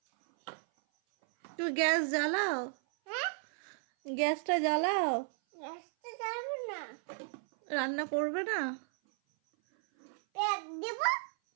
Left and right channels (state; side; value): silent; left; 55 dB below the other